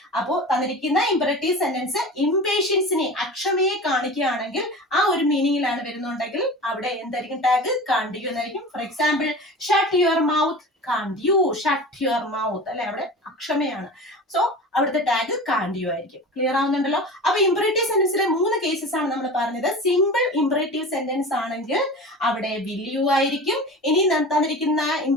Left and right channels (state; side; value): normal; both; correlation 0.34